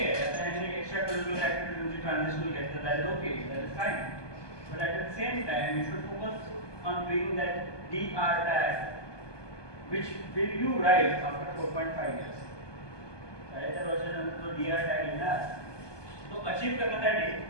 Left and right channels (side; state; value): right; late; 1.2 ms